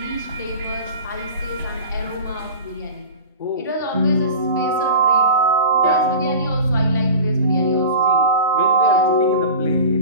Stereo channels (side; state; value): both; inverted; correlation -0.35